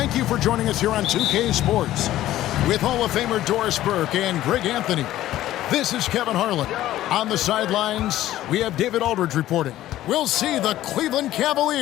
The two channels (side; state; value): right; quieter; 14.1 dB